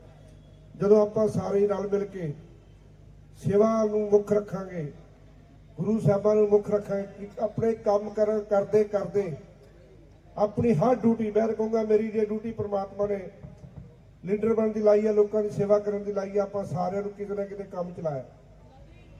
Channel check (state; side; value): identical; both; correlation 1.00